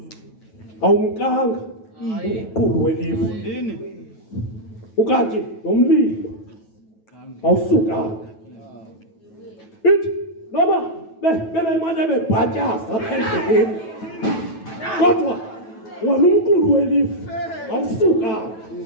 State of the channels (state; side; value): late; right; 9.2 ms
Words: Awumkanga umqulu welifu. Ukanti nomlilo awusukanga. Ithi noma bebemane bebhatyaza apha endleleni. Kodwa wona umqulu welifu awusukanga.